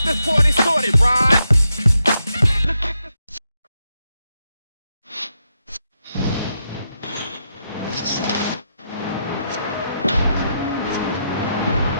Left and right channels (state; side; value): inverted; both; correlation -0.83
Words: this party started, right?